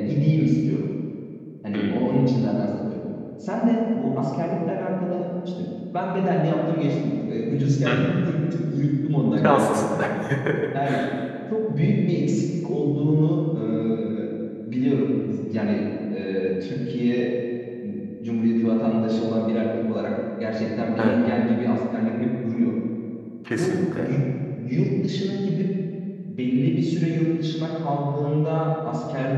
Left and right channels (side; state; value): both; identical; correlation 1.00